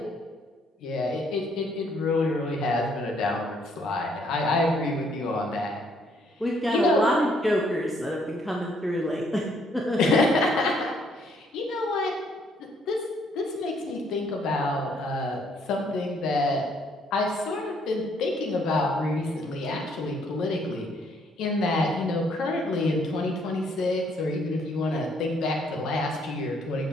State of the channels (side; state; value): both; normal; correlation 0.67